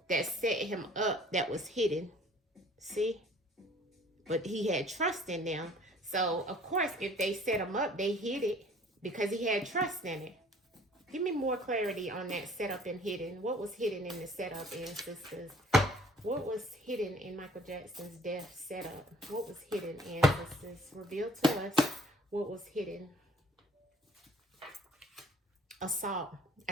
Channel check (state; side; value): normal; both; correlation 0.54